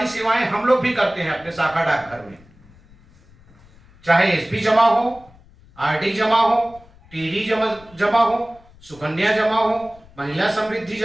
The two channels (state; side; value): noise; left; rumble, 26 dB below the sound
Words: सेवाएं हम लोग भी करते हैं अपने शाखा डाकघर में, चाहे एसपी जमा हो, आरडी जमा हो, टीडी जमा हो, सुकन्या जमा हो, महिला समृद्धि